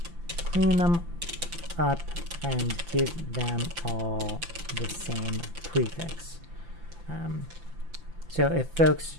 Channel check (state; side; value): late; left; 5.9 ms